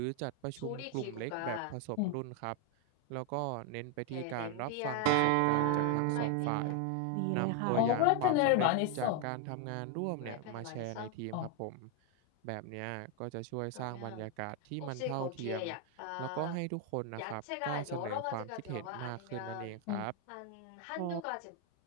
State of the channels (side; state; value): both; different; correlation 0.01